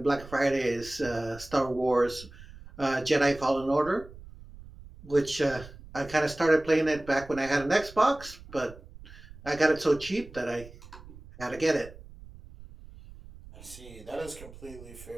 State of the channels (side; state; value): right; noise; rumble, 18 dB below the sound